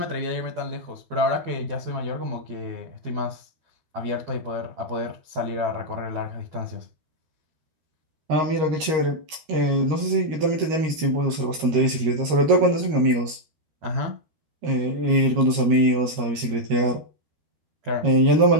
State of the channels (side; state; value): left; late; 13 ms